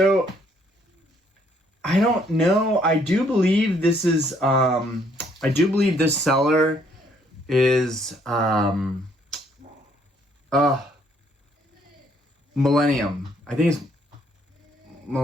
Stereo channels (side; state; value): both; normal; correlation 0.67